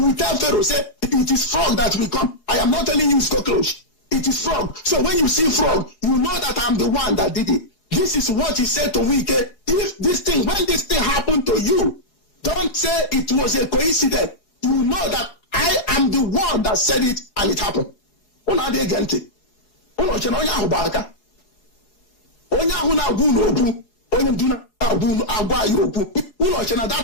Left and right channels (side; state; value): right; late; 4.8 ms